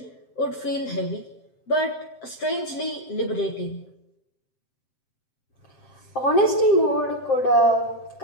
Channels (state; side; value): late; right; 7.6 ms